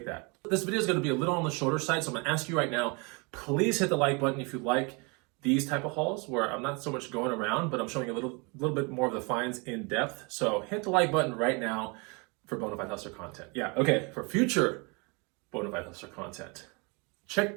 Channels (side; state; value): left; quieter; 30.4 dB